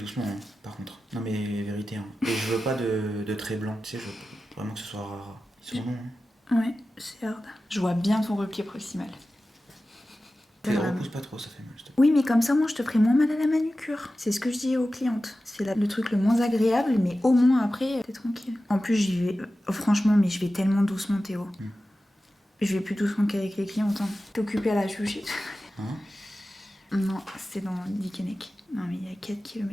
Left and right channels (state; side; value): normal; both; correlation 0.94